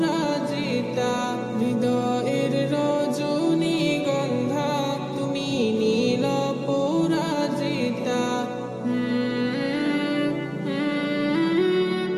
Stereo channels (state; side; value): identical; both; correlation 1.00